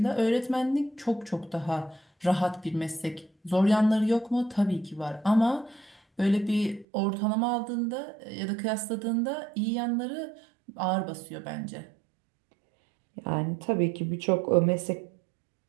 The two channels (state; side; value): drops out; left; at 6.9 s